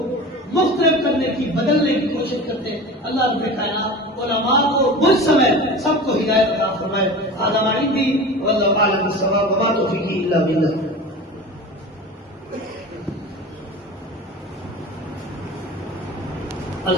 مختلف کرنے کی، بدلنے کی کوشش کرتے ہیں. اللہ رب کائنات علماء کو مجھ سمیت سب کو ہدایت عطا فرمائے. ھذا ما عندی واللہ اعلم بالصواب وما توفیقی الا باللہ.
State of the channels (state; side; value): normal; both; correlation 0.33